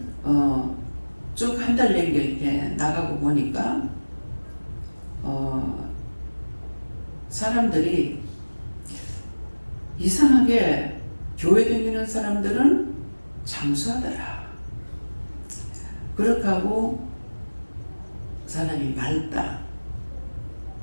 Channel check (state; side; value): inverted; both; correlation -1.00